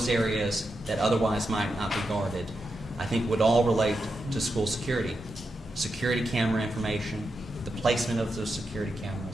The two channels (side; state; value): both; normal; correlation 0.87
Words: areas that otherwise might not be guarded, I think would all relate to school security. Security camera information, the placement of those security